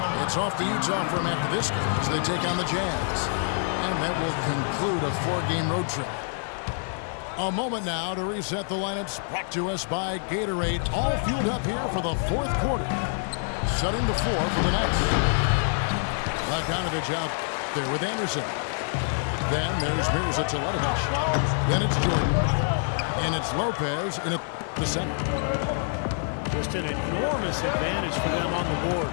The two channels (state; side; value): silent; right; 61 dB below the other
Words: It's off to Utah from after this game as they take on the Jazz. And that will conclude a 4-game road trip. A moment now to reset the lineups brought to us by Gatorade. All fueled up here for the fourth quarter. Setting the floor for the Nets. Bogdanovich out there with Anderson. Then there's Mirza Teletovic. Then it's Jordan. And it's Lopez in the the center. Just an enormous advantage for them on the